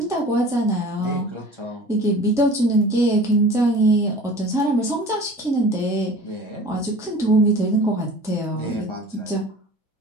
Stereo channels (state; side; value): normal; both; correlation 0.42